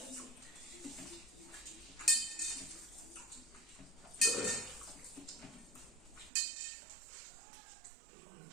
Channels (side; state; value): left; drops out; at 6.3 s